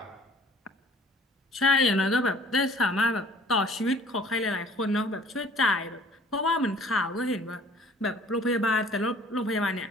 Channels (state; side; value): normal; both; correlation 0.53